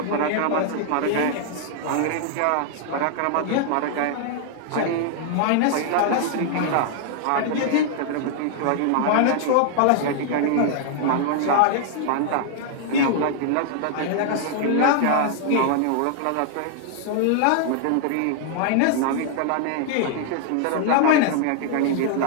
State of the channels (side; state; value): both; different; correlation -0.01